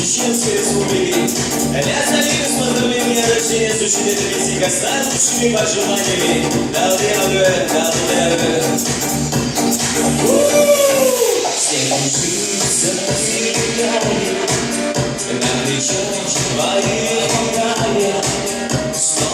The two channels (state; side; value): identical; both; correlation 1.00